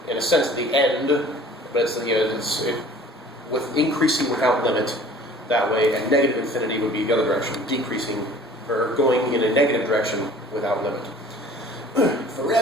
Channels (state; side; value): normal; both; correlation 0.48